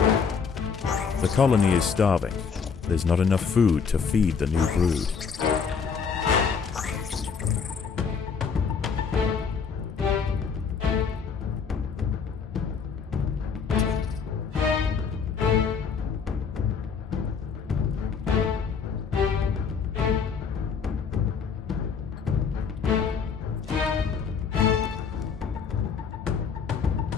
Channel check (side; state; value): right; quieter; 6.0 dB